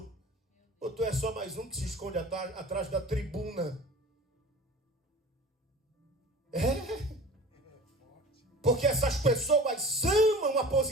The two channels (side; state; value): both; normal; correlation 0.40